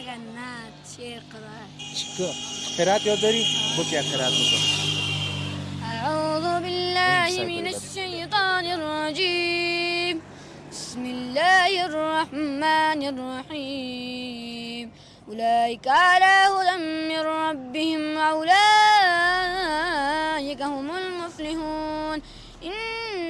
نه شعر قرائت یاد داری بگو یک قرائت بکن أعوذ بالله من الشيطان الرجيم بسم الله الرحمن الرحيم أولئك على هدى من ربهم وأولئك هم المفلحون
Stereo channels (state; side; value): identical; both; correlation 1.00